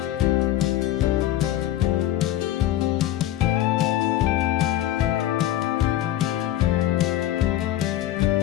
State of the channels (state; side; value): quieter; right; 13.2 dB